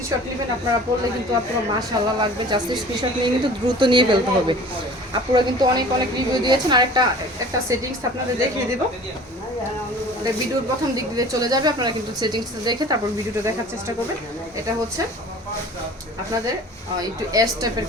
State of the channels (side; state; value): both; normal; correlation 0.44